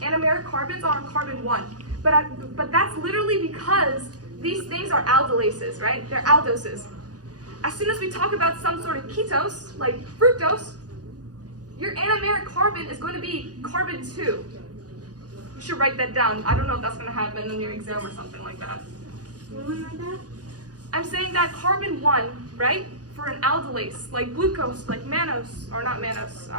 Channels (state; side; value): late; left; 0.68 ms